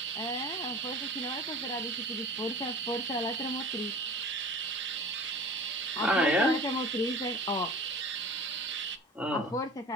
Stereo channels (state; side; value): normal; both; correlation 0.40